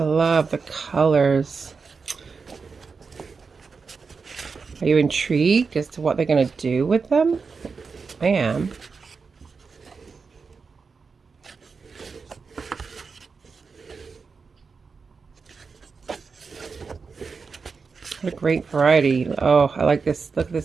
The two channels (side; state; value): left; quieter; 5.0 dB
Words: love the colors. Are you intrigued as to what they're going to do with them? I am. What a great variety. Oh, I like this. Look at